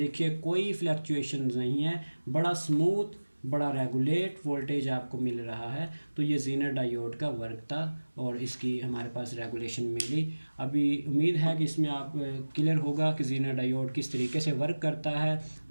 कोई फ्लक्चुएशन नहीं है, बड़ा स्मूथ, बड़ा रेगुलेट वोल्टेज आपको मिल रहा है। तो ये जीनर डायोड का वर्क था और इसकी हमारे पास रेगुलेशन मिली। अभी उम्मीद है कि इसमें आप क्लियर होगा कि जीनर डायोड किस तरीके से वर्क करता है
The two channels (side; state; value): both; inverted; correlation -1.00